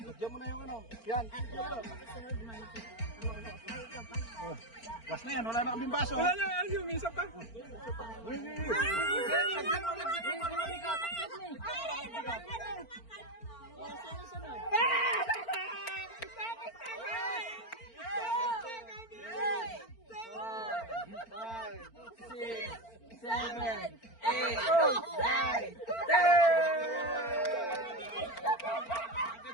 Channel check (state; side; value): late; right; 4.4 ms